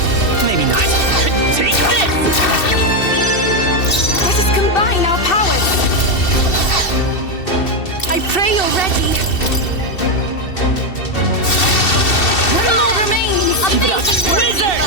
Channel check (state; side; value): late; right; 2.7 ms